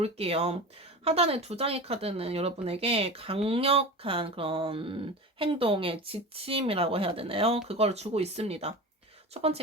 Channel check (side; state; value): both; normal; correlation 0.31